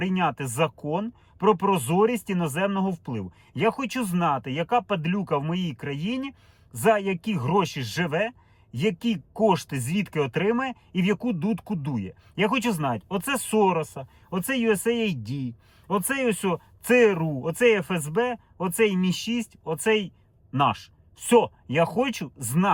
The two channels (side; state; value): both; identical; correlation 1.00